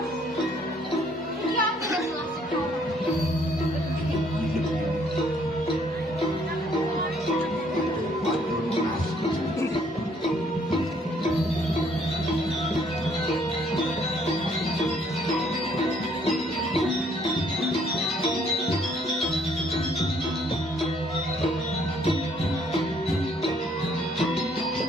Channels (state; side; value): normal; both; correlation 0.65